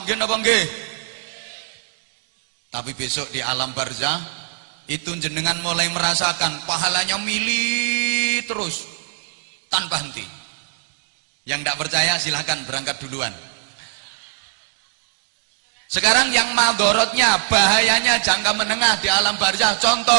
nggih napa nggih? Tapi besok di alam barzah itu jenengan mulai merasakan pahalanya mili terus tanpa henti. Yang tidak percaya silahkan berangkat duluan. Sekarang yang madorotnya, bahayanya jangka menengah di alam barzah.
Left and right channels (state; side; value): silent; left; digital silence